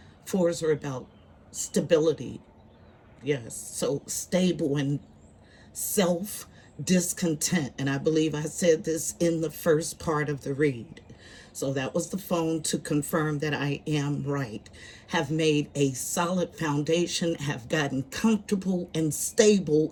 Fours are about stability. Yes, so stable and self discontent. And I believe I said this in the first part of the read. So that was the phone to confirm that I am right. Have made a solid foundation, have gotten comfortable and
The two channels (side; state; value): both; identical; correlation 1.00